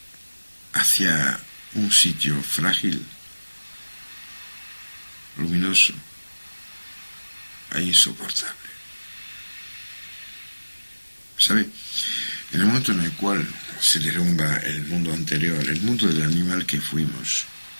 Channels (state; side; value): inverted; both; correlation -1.00